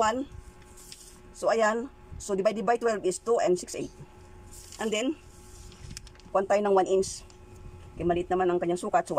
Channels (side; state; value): both; identical; correlation 1.00